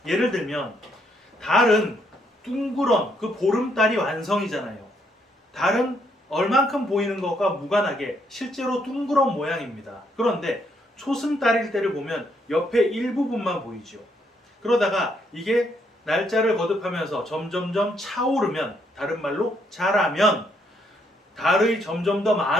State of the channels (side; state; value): both; normal; correlation 0.73